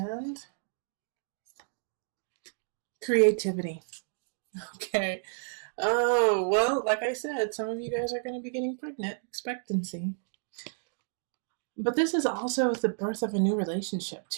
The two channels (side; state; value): left; silent; digital silence